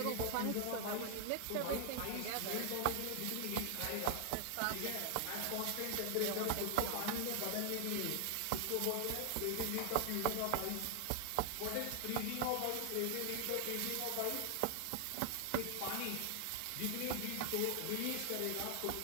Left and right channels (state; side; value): different; both; correlation 0.00